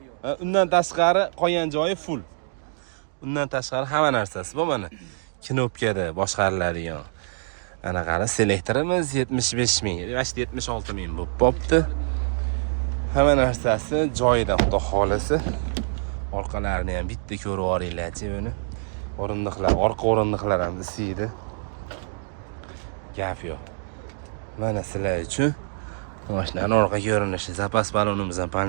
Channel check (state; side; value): silent; left; digital silence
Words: Undan tashqari qolgan joyi full. Undan tashqari hamma narsasi bor mana. Knopkada boshqariladigan. Ana qara, selektorimiz 75 ming, yoki 76 ming bo'lib qopti. Hamma narsasi joyida, xudo xolasa. Orqalarini ham bitta ko'rib oringlar-chi buni. O'rindiqlar, orqa o'rindiqlar ham isiydi. Gap yo'q. Mana sizlar uchun mashinaning orqa ko'rinishi, zapas balonimiz ham